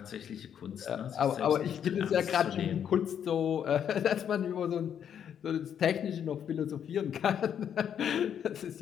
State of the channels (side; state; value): right; quieter; 8.8 dB